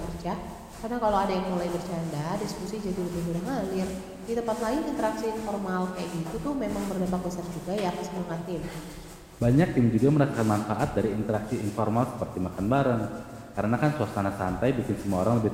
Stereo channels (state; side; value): identical; both; correlation 1.00